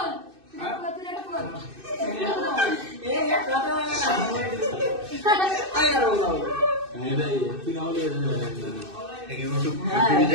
তুই এটা বল এই এক কথা বলে না আই আর বললাম তুই না হলে ইউটিউব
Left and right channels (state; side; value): late; left; 2.6 ms